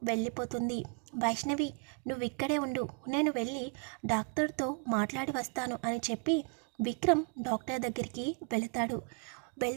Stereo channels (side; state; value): left; quieter; 38.1 dB